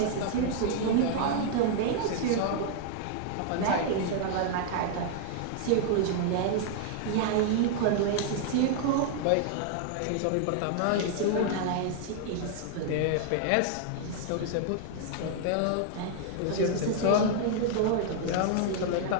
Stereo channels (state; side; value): different; both; correlation 0.00